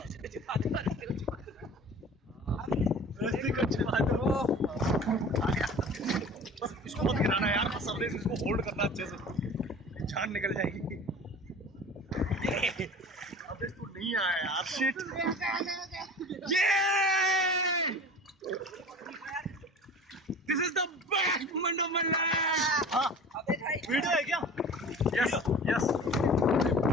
इसको मत गिराना यार, सबने इसको होल्ड करना अच्छे से, जान निकल जाएगी। अबे तू नहीं आया यार, शिट। ये this is the best moment of my life. हाँ, वीडियो है क्या? यस यस,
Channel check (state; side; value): normal; both; correlation 0.40